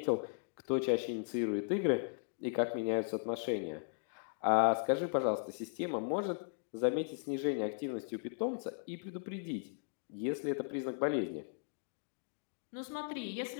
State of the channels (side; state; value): right; silent; digital silence